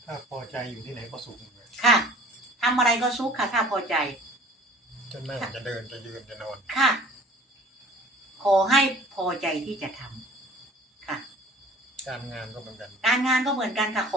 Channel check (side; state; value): both; normal; correlation 0.47